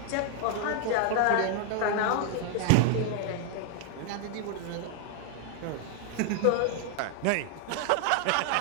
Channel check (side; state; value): both; different; correlation 0.00